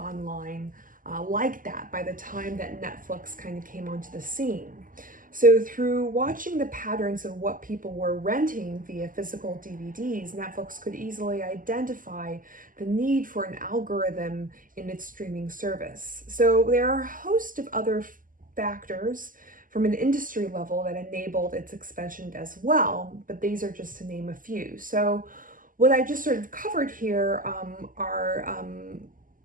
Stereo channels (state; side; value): late; left; 0.40 ms